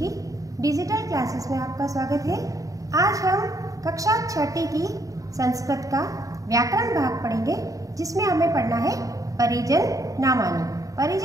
डिजिटल क्लासेस में आपका स्वागत है। आज हम कक्षा 6ठी की संस्कृत का व्याकरण भाग पढ़ेंगे, जिसमें हमें पढ़ना है परिजन नामानी।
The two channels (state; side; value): late; left; 0.16 ms